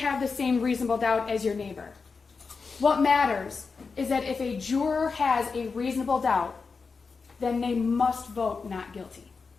the same reasonable doubt as your neighbor. What matters is that if a juror has a reasonable doubt, then they must vote not guilty.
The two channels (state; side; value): quieter; right; 4.8 dB